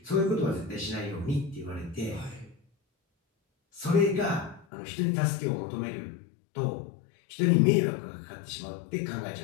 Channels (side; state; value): right; drops out; at 4.7 s